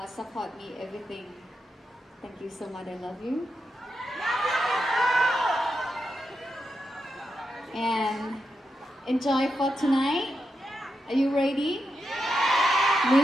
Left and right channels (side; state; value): both; normal; correlation 0.86